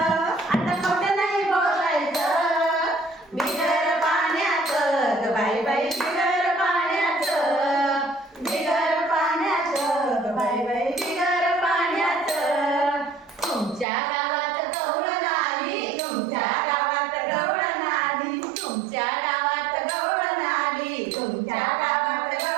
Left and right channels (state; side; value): drops out; left; at 13.9 s